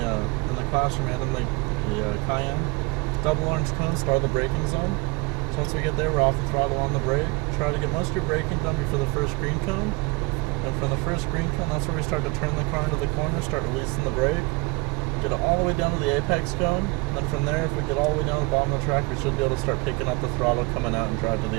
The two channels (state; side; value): quieter; left; 26.2 dB